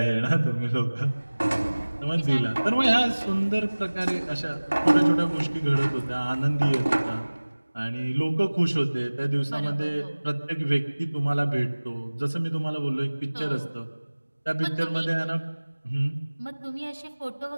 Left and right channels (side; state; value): both; inverted; correlation -1.00